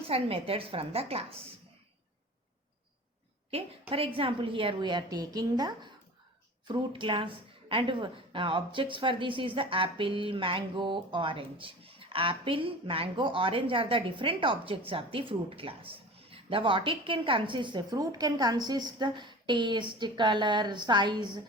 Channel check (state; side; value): normal; both; correlation 0.38